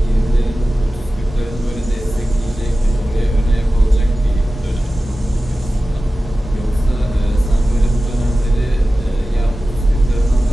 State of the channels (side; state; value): both; normal; correlation 0.95